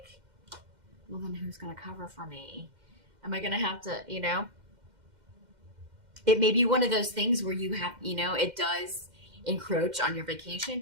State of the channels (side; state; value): left; late; 2.1 ms